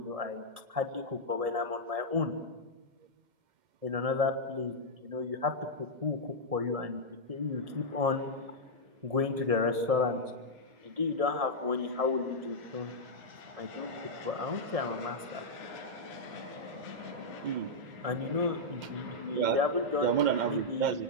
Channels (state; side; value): late; left; 1.7 ms